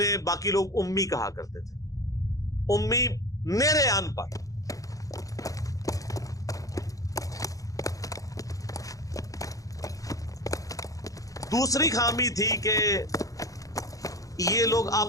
باقی لوگ امی کہا کرتے تھے. امی نیرے ان پڑھ. دوسری خامی تھی کہ یہ لوگ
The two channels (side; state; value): right; late; 0.17 ms